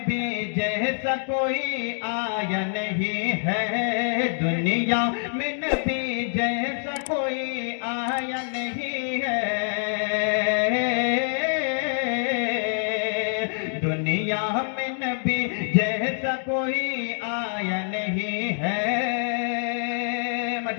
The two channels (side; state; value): right; silent; digital silence